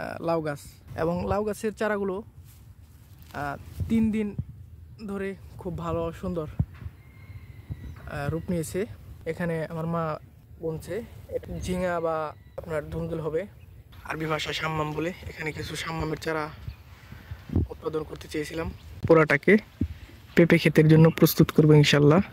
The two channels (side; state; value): both; identical; correlation 1.00